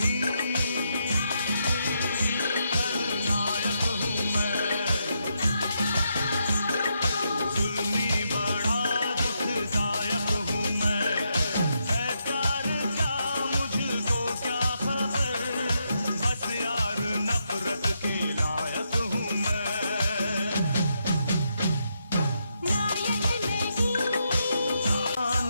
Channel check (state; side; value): inverted; both; correlation -0.80